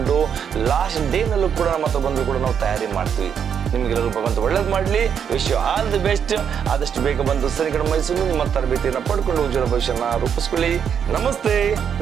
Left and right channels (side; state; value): left; quieter; 7.8 dB